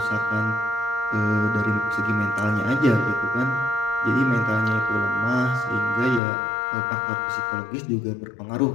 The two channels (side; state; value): right; drops out; at 6.2 s